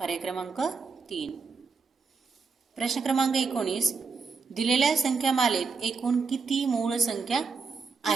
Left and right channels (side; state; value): left; quieter; 4.8 dB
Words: पर्याय क्रमांक 3. प्रश्न क्रमांक 19, दिलेल्या संख्यामालेत एकूण किती मूळ संख्या